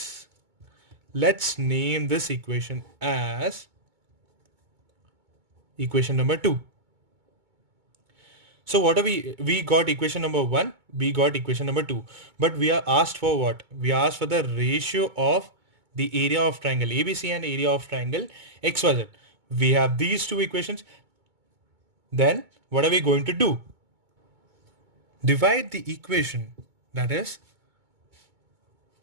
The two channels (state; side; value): late; left; 2.2 ms